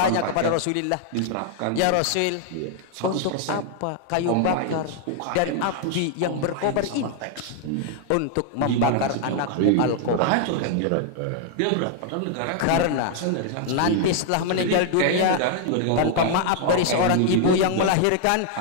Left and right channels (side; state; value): both; different; correlation 0.00